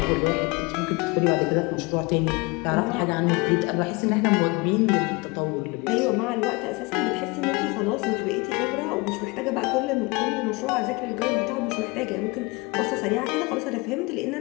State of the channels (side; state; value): right; quieter; 26.4 dB